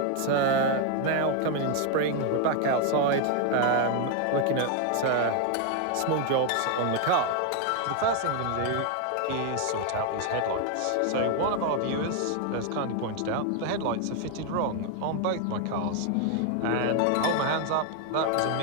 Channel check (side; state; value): both; different; correlation 0.00